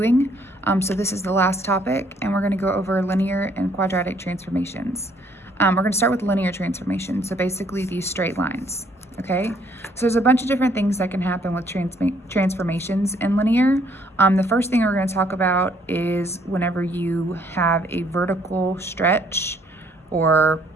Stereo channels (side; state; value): both; normal; correlation 0.65